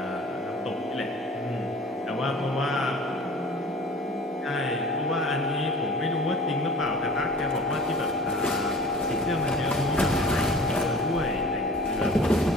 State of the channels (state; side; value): normal; both; correlation 0.45